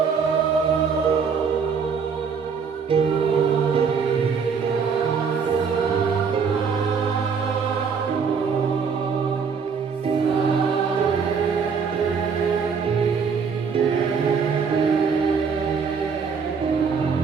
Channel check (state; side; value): quieter; left; 6.0 dB